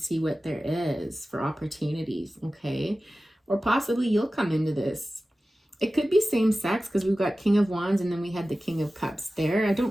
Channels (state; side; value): normal; both; correlation 0.95